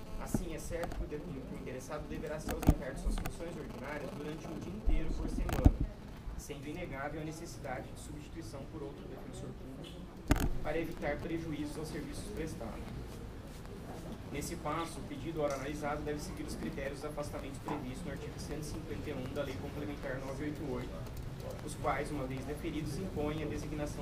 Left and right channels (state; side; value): identical; both; correlation 1.00